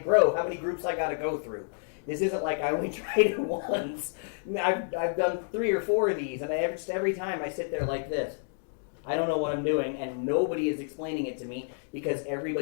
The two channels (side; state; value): right; silent; digital silence